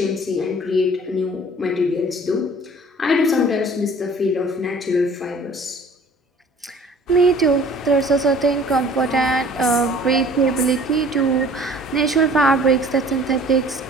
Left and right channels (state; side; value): normal; both; correlation 0.50